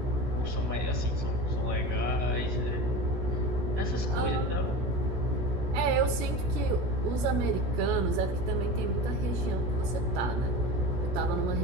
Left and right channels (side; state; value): left; late; 16 ms